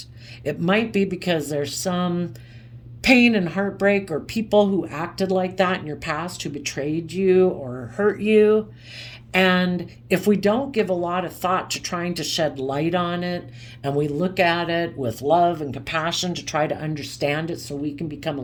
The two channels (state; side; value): identical; both; correlation 1.00